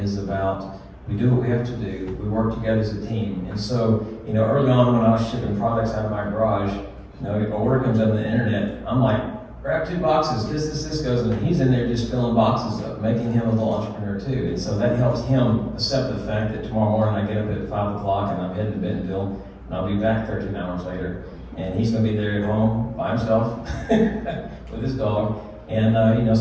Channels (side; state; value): both; identical; correlation 1.00